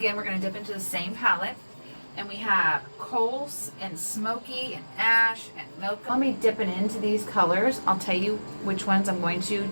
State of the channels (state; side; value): inverted; both; correlation -1.00